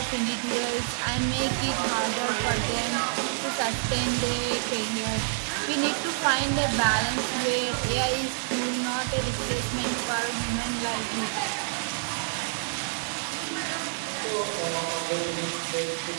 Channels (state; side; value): silent; left; digital silence